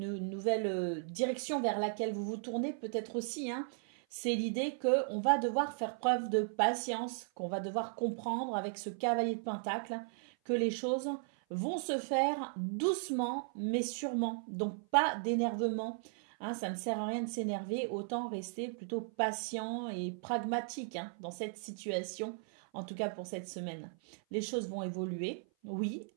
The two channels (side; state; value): left; silent; 54 dB below the other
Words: nouvelle direction vers laquelle vous vous tournez peut-être aussi. C'est l'idée qu'on va devoir faire preuve de patience, qu'on va devoir comprendre avec ce cavalier de Pentacle que les choses vont se faire doucement mais sûrement. Donc pas d'énervement. Ça ne sert à rien de s'énerver, autant rester plutôt patient et pragmatique dans cette situation, en tout cas pour cette semaine. Les choses vont évoluer, oui,